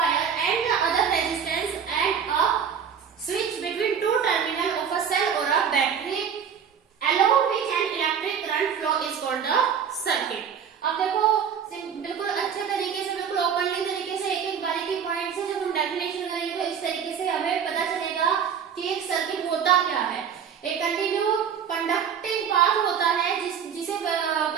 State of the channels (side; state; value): left; quieter; 7.5 dB